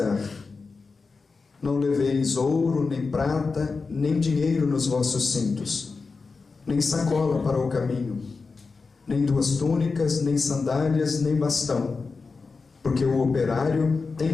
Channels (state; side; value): quieter; right; 4.4 dB